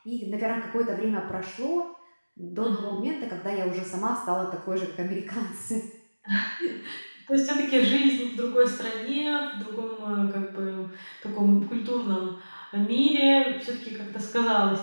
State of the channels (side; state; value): both; inverted; correlation -1.00